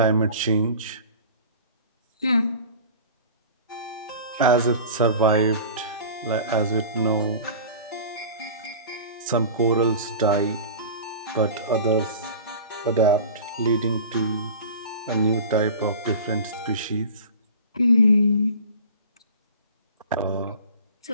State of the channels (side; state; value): both; inverted; correlation -0.38